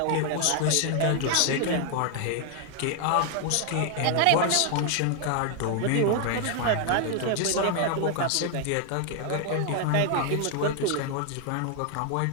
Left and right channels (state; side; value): different; both; correlation 0.00